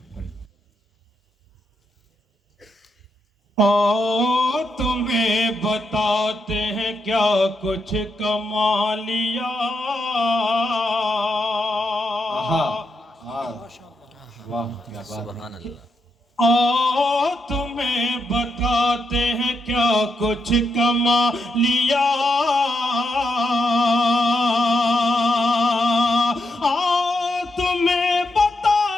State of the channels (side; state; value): both; normal; correlation 0.82